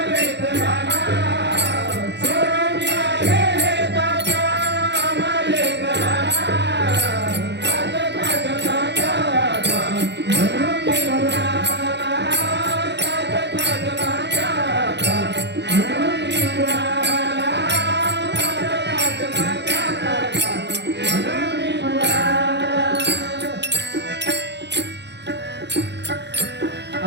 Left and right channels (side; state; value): left; late; 0.50 ms